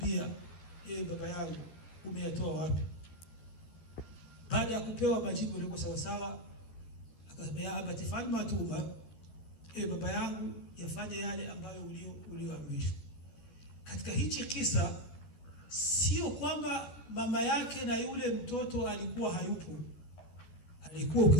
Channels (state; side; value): late; right; 12 ms